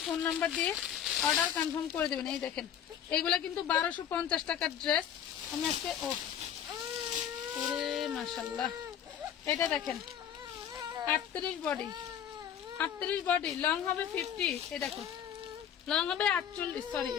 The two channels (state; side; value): quieter; right; 9.2 dB